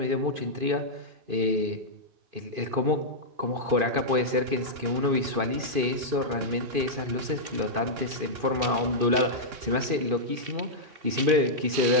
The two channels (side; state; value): left; late; 2.5 ms